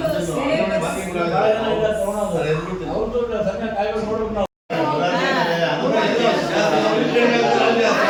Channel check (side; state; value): both; identical; correlation 1.00